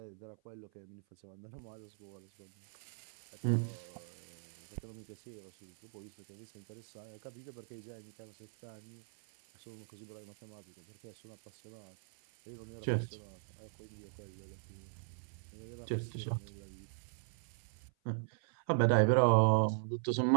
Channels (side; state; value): left; silent; 51 dB below the other